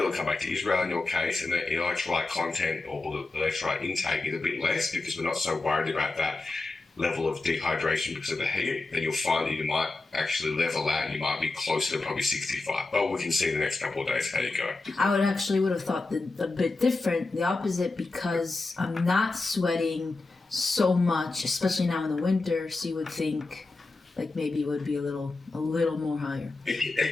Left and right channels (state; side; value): quieter; right; 3.4 dB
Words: or come back to Israel in your case, and the electrolyte content or the electrolyte intake is a bit less because we're not so worried about that level of dehydration because of the heat, then you'll find that you might actually level out and you might be closer to probably 65. But we can see in the next couple of days how you go. I would have thought a bit different, the opposite, because I'm not sweating so much, especially now in the winter. So you would think like maybe it would be a little more higher.